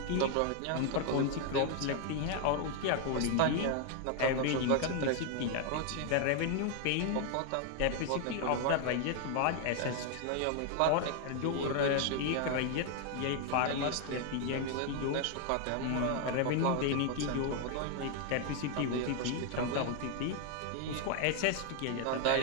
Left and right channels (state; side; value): different; both; correlation 0.00